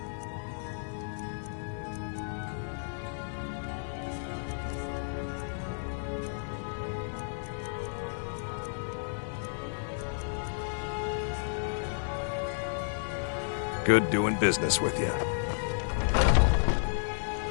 Good doing business with you.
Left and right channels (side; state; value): right; silent; digital silence